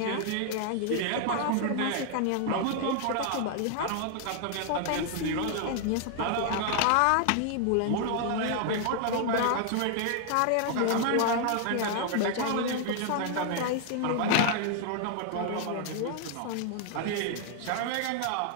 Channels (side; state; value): both; different; correlation 0.00